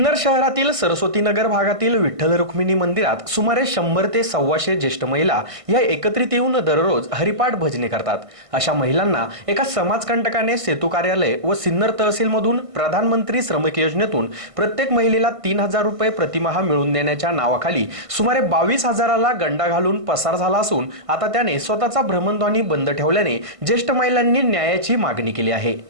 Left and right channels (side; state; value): left; late; 1.5 ms